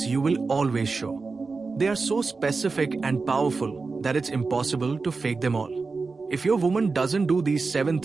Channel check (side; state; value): left; quieter; 4.2 dB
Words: you will always show. They are so specific and powerful that it's impossible to fake them all. If your woman doesn't do these 7